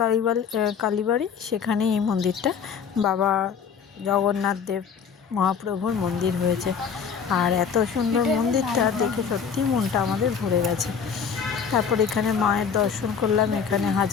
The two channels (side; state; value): right; quieter; 6.7 dB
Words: কালীবাড়ি, সেখানেই এই মন্দিরটা বাবা জগন্নাথ দেব মহাপ্রভুর মন্দির হয়েছে। আর এত সুন্দর মন্দিরটা দেখে সত্যি মনটা আমাদের ভরে গেছে। তারপর এখানে মায়ের দর্শন করলাম, এখানে